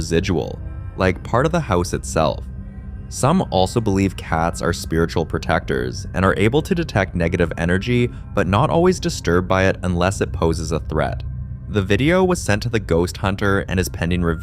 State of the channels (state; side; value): identical; both; correlation 1.00